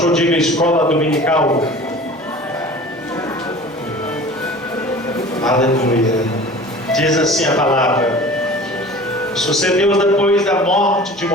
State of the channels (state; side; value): normal; both; correlation 0.42